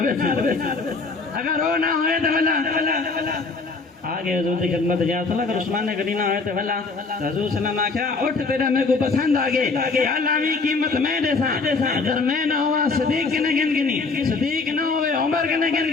سکتے اگر وہ نہ ہوئے تو بلا آگے حضور کی خدمت جا صلی اگر عثمان غنی نہ ہوئے تو بلا حضور صلی اللہ علیہ وسلم آکھا اٹھ تیرا میرے کو پسند آگے علاوی قیمت میں دے سا اگر میں نہ ہوا صدیق کنے گن گنی صدیق نہ ہوئے عمر کنے گن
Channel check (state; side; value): quieter; right; 4.1 dB